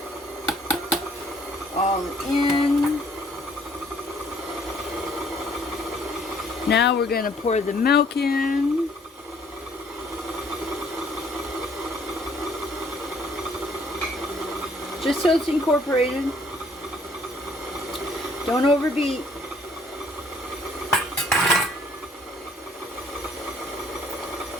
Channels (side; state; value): both; normal; correlation 0.62